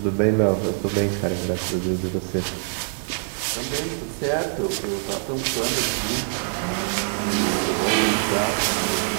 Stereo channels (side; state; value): left; silent; digital silence